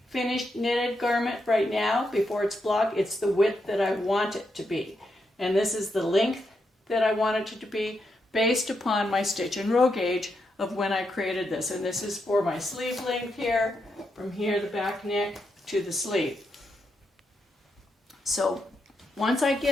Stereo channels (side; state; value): both; normal; correlation 0.82